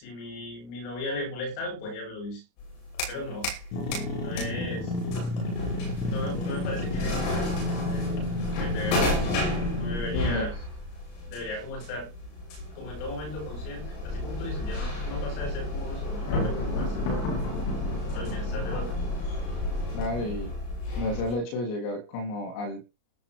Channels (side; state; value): right; late; 34 ms